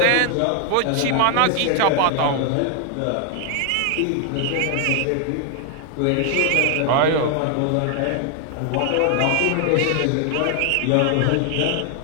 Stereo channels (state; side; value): different; both; correlation 0.00